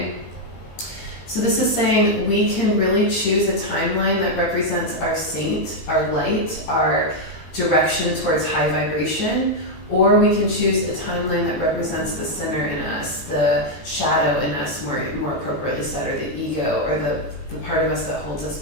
So this is saying we can really choose a timeline that represents our saint, our light, our direction towards high vibration, or we can choose a timeline that represents the sinner in us, the shadow in us, more appropriately said, or the ego, or the part of us that holds us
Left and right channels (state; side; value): late; right; 17 ms